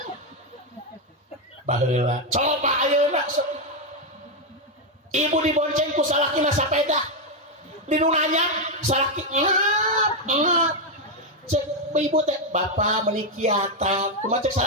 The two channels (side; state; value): both; normal; correlation 0.03